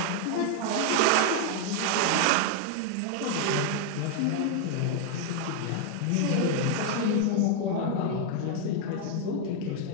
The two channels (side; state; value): both; different; correlation 0.00